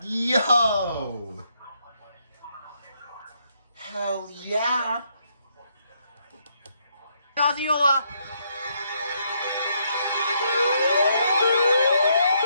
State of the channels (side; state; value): both; inverted; correlation -0.74